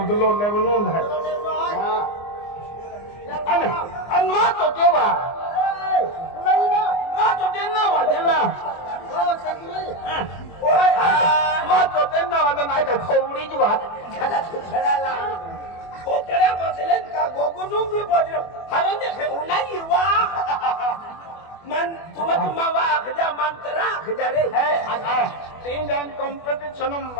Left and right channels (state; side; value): late; right; 24 ms